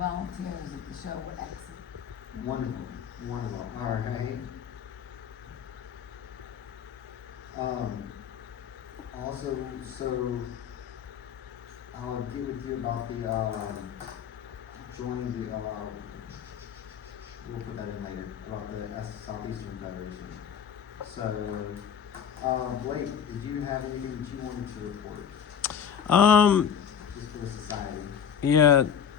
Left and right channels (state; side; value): quieter; right; 7.9 dB